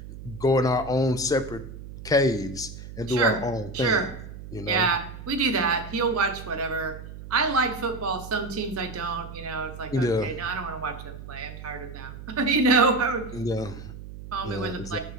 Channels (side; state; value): right; noise; hum, 13 dB below the sound